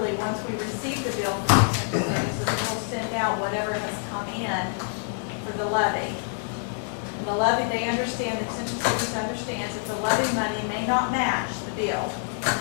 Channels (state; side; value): silent; right; 61 dB below the other